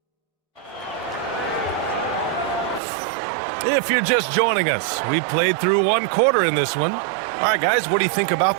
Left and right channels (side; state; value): left; drops out; at 2.8 s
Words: If you're just joining us, we played through 1 quarter in this one. All right, guys, what do you think about